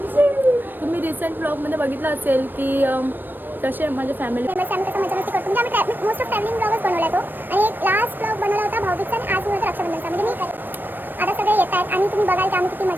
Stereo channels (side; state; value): left; late; 0.093 ms